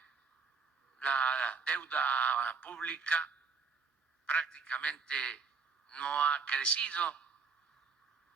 la deuda pública prácticamente no ha crecido,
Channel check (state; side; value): quieter; left; 5.2 dB